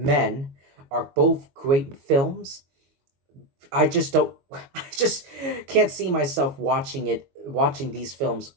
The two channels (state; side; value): late; left; 22 ms